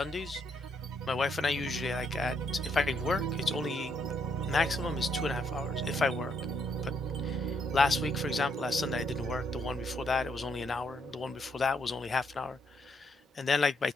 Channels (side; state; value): both; normal; correlation 0.74